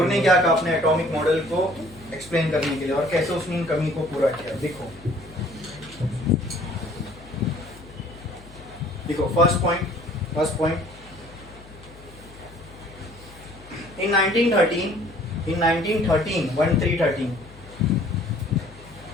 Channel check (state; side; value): noise; left; hum, 20 dB below the sound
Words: ने क्या कहा अपने एटॉमिक मॉडल को एक्सप्लेन करने के लिए, और कैसे उसने इन कमी को पूरा किया। देखो first point in 1913